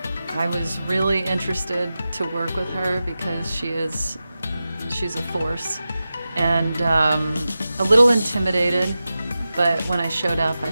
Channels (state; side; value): inverted; both; correlation -0.93